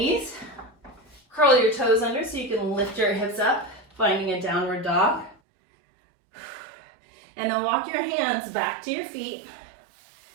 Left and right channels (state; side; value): drops out; left; at 5.4 s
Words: Curl your toes under so you can lift your hips up, finding a downward dog. And then walk your hands back to your feet.